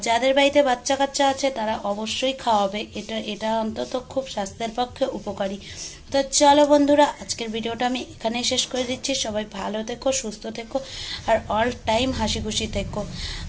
যাদের বাড়িতে বাচ্চা কাচ্চা আছে তারা অবশ্যই খাওয়াবে, এটা অন্তত খুব স্বাস্থ্যের পক্ষে উপকারী। তো চলো বন্ধুরা, আজকের ভিডিওটা আমি এখানেই শেষ করে দিচ্ছি। সবাই ভালো থেকো, সুস্থ থেকো, আর অল টাইম হাসি খুশি থেকো।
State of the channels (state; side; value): identical; both; correlation 1.00